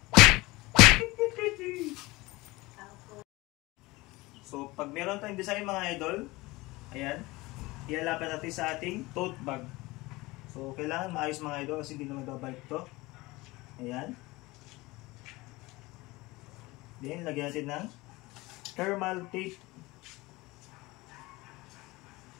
So pag meron tayong design mga idol, ayan, ilalapit natin sa ating tote bag. So, kailangan maayos mga idol kasi hindi naman babalik ito. Ayan. Then, lagyan natin ng thermal tape.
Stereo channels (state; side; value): quieter; right; 21.5 dB